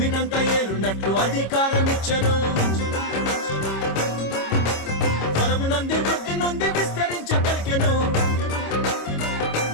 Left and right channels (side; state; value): right; late; 26 ms